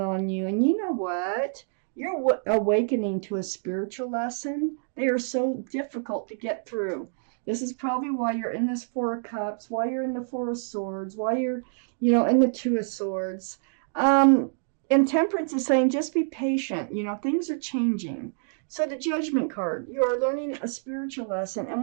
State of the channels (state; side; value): silent; left; digital silence